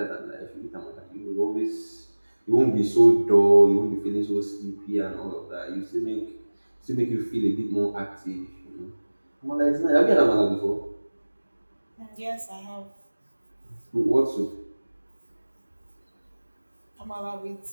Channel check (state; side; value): inverted; both; correlation -1.00